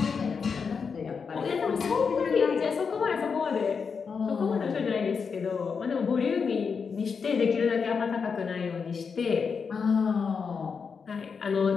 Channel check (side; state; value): right; quieter; 5.7 dB